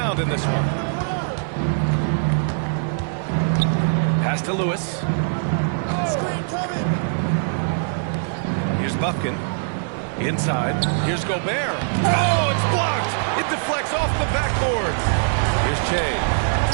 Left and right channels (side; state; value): left; silent; digital silence